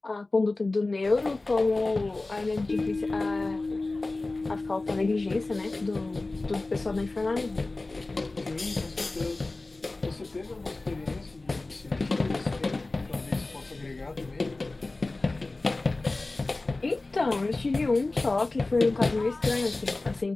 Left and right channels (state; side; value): quieter; right; 3.2 dB